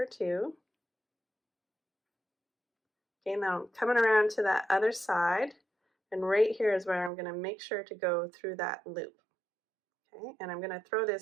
2. Okay, now I'm coming around to that other side, and right here is where I'm going to make sure to go through that loop. Okay, and I'm going to throw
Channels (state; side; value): drops out; left; at 7.1 s